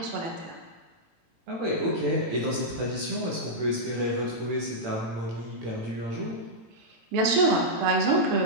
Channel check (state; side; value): late; left; 18 ms